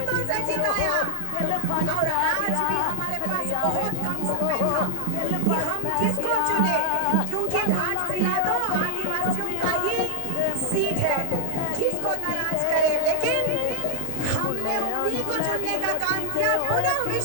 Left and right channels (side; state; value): both; different; correlation 0.00